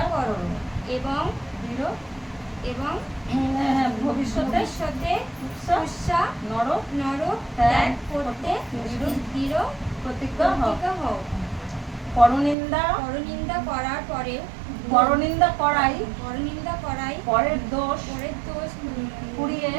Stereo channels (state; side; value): drops out; left; at 12.6 s